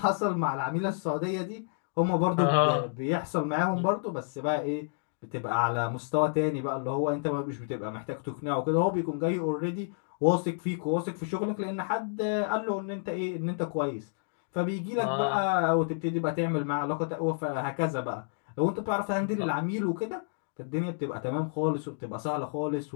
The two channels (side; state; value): right; silent; digital silence